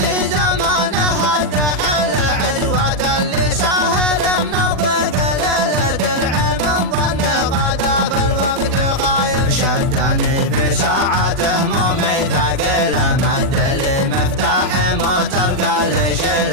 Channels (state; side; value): late; left; 40 ms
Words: زمانه الدحل عزوة اللي ساهر من الضيق للدرع من ظن غدا في الوقت خايب شدني في ساعته مومي ثقيله مد لي مفتاح موتر قال